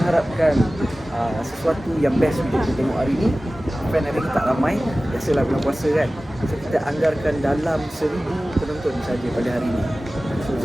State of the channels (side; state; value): both; normal; correlation 0.97